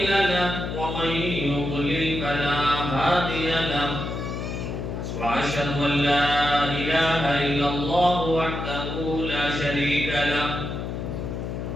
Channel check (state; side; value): noise; left; hum, 5 dB below the sound